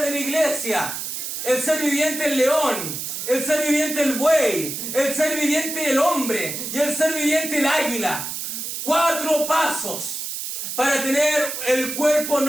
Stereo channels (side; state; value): right; noise; hiss, 5 dB below the sound